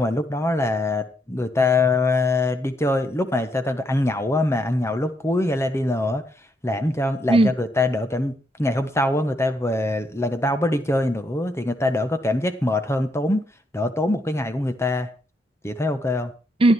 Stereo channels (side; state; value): both; normal; correlation 0.76